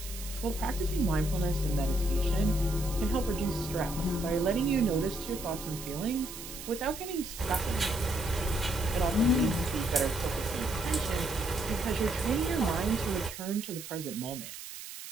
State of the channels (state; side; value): noise; right; hiss, 11 dB below the sound